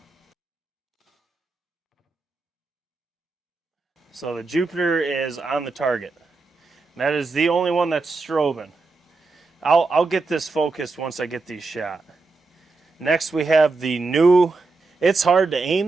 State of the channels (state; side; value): quieter; left; 3.8 dB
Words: So the Jupiter is on the target. That is the only one that's strobing. I'll get this focused once I get these shot. Next we have the new... It's hard to